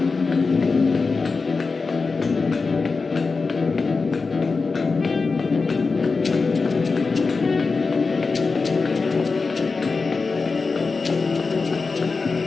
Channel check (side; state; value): right; quieter; 4.3 dB